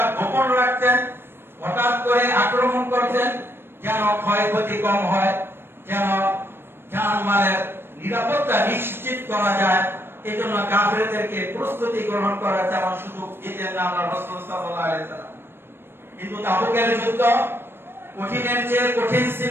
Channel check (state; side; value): late; left; 0.11 ms